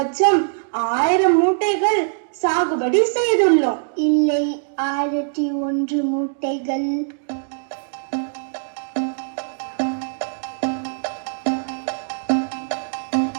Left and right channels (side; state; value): left; silent; digital silence